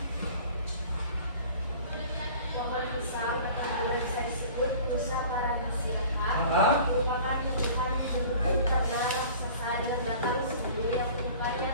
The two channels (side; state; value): both; inverted; correlation -0.45